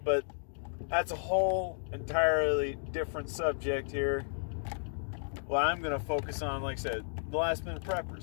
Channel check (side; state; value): right; silent; digital silence